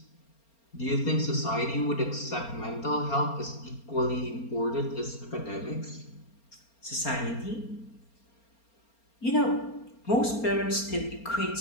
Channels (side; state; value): right; late; 4.3 ms